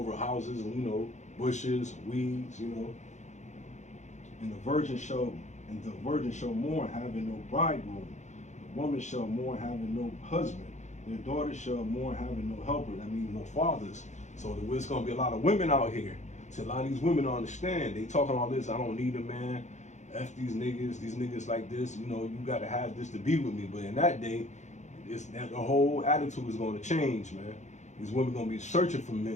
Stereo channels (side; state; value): right; late; 0.34 ms